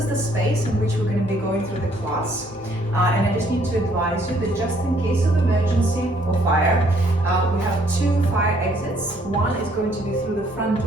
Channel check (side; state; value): both; normal; correlation 0.65